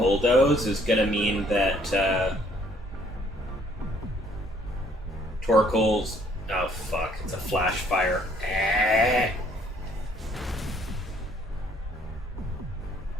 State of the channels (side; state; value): both; normal; correlation 0.63